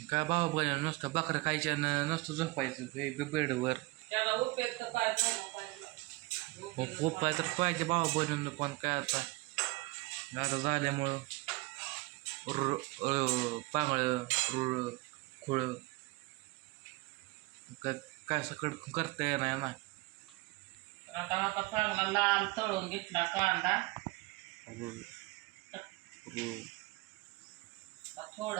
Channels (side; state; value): left; quieter; 23.5 dB